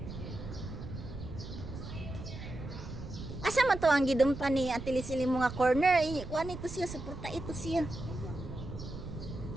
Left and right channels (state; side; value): noise; right; rumble, 10 dB below the sound